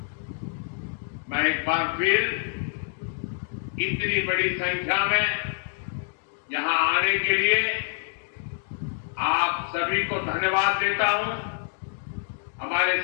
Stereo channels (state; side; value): silent; right; digital silence